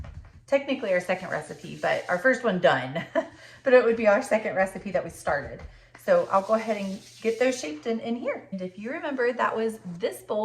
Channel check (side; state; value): both; identical; correlation 1.00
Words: technically our second recipe, but our first one done. But it would be our second recipe that we started. So I'll go ahead and get those shaped in here. And if you remember, that was this